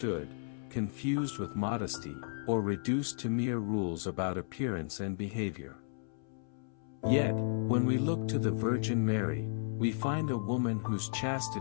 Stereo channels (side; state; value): right; silent; 55 dB below the other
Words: confused with modesty, or reduced to mere rules about appearance and behavior. Yet, when we look to the Virgin Mary, we find a woman whose